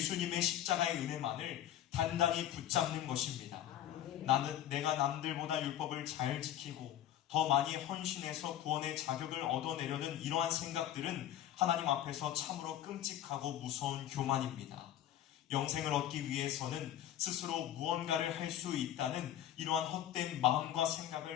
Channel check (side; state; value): right; quieter; 11.5 dB